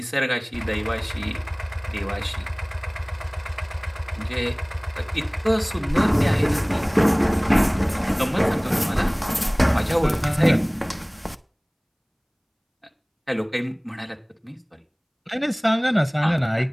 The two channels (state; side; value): identical; both; correlation 1.00